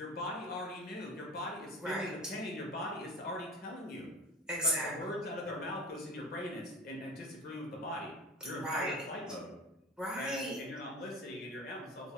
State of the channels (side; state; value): both; normal; correlation 0.33